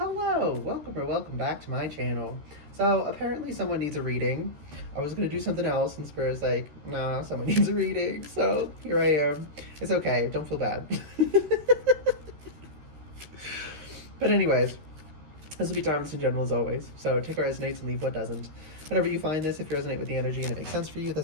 Hello, welcome or welcome back to my channel. So apparently someone needs a reading. I was gonna do something else and Spirit's like, nah, someone needs a reading. So here I am. It's okay, don't feel bad. But anyways, this will be timeless and general as always. So take what resonates and leave what doesn't. Whenever you find this, if you resonate with the energy and it makes sense for you,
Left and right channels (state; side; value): late; left; 13 ms